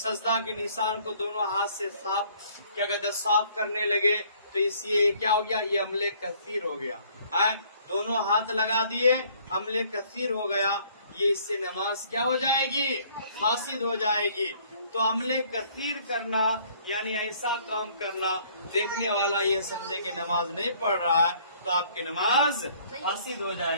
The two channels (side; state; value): both; inverted; correlation -0.59